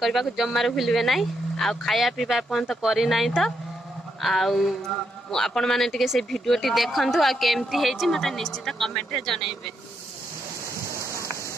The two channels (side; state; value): both; normal; correlation 0.80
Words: करबा को जम्मार भूलबे नाही आ खाया पीबा पर्यंत करी नाही तो आउ आपण माने टिके से वीडियोटी देखंतु आ केमती हेछि मते निश्चित कमेंट रे जणाइबे